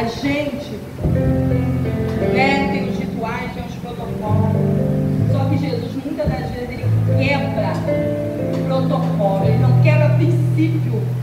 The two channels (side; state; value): both; identical; correlation 1.00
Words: gente, né, tem os rituais, tem os protocolos, só que Jesus muitas das vezes ele quebra o protocolo, ele não quebra princípio,